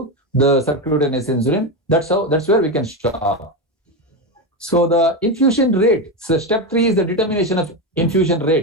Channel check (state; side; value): normal; both; correlation 0.13